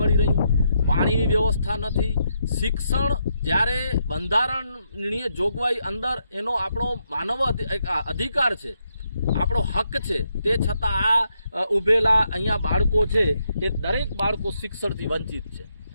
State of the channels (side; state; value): both; inverted; correlation -0.79